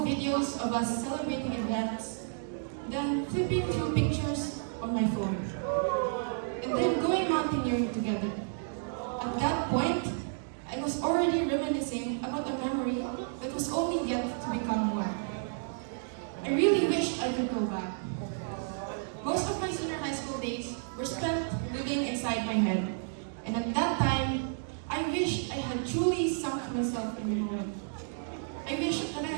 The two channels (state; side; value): silent; left; digital silence